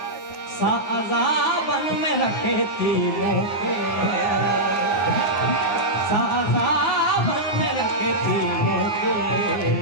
सा अज़ाबन में रखे थी मोके साज़ाबन में रखे थी मोके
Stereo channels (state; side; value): late; right; 9.4 ms